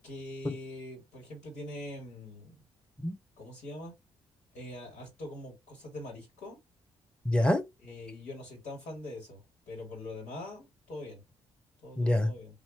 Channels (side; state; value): both; normal; correlation 0.90